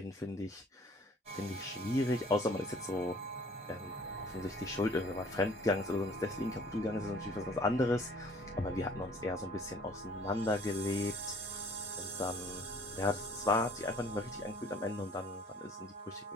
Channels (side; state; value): both; normal; correlation 0.55